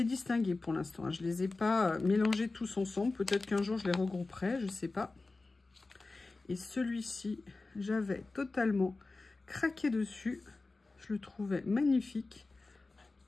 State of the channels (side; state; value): right; quieter; 3.5 dB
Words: distingués pour l'instant, hein. Je ne les ai pas mélangés tous ensemble. Peut-être qu'un jour, je les regrouperai, je ne sais pas. Et celui-ci, j'avais totalement craqué dessus. Je le trouvais magnifique.